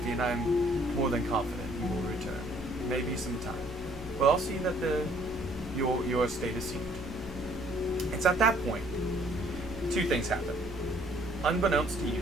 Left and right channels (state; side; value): normal; both; correlation 0.61